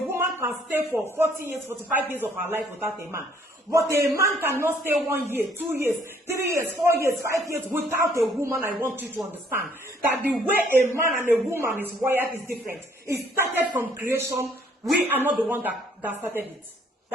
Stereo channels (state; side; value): normal; both; correlation 0.63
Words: can stay for 40 years, 45 years of her life without a man. But a man cannot stay 1 year, 2 years, 3 years, 4 years, 5 years without a woman. I want you to understand that the way a man and a woman is wired is different. It started from creation. We are not the one that started it.